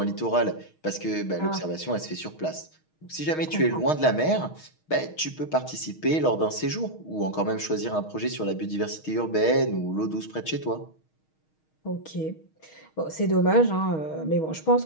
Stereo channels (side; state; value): right; late; 6.4 ms